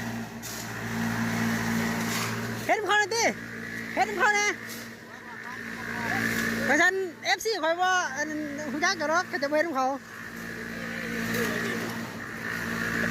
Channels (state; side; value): identical; both; correlation 1.00